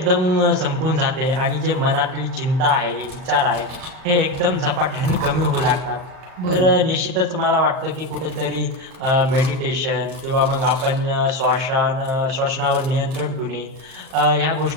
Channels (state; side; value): late; left; 38 ms